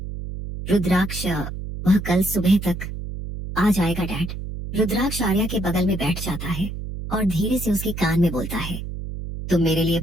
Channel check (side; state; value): right; noise; hum, 7 dB below the sound